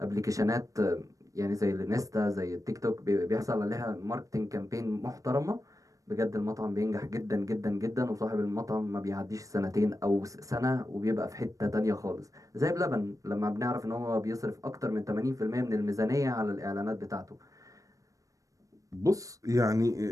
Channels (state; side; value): late; left; 0.16 ms